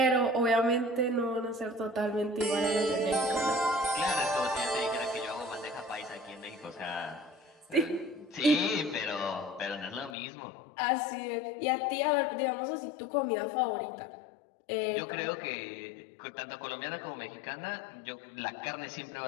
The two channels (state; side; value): drops out; right; at 10.2 s